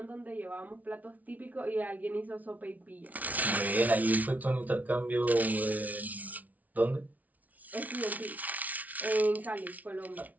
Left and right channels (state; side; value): late; left; 0.073 ms